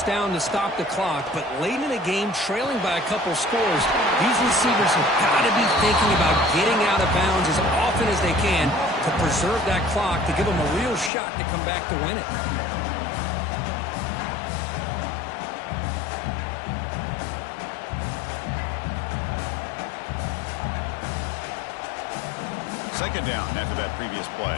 down to stop the clock. But late in the game, trailing by a couple scores, these receivers have got to be thinking about getting out of bounds as often as they can to preserve that clock, to give them a real shot to come back to win it. Second down after that previous play.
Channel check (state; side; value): drops out; right; at 11.1 s